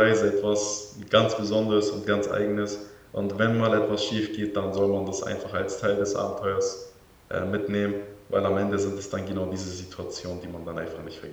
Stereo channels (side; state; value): both; identical; correlation 1.00